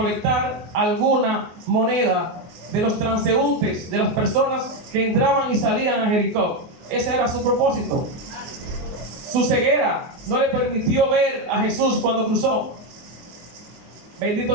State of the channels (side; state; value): left; late; 24 ms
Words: alguna moneda de los transeúntes, de las personas que entraban y salían a Jericó. Ese era su propósito. Su ceguera no le permitió ver a Jesús cuando cruzó.